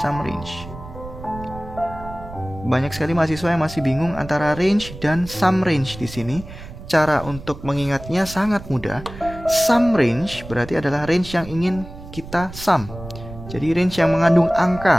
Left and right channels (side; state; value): right; noise; rumble, 14 dB below the sound